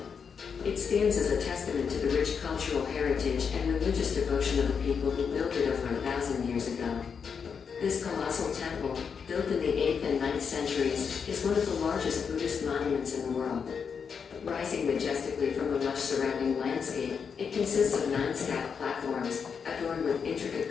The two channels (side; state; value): right; quieter; 6.3 dB